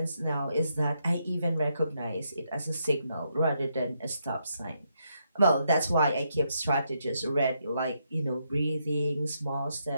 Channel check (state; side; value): inverted; both; correlation -0.79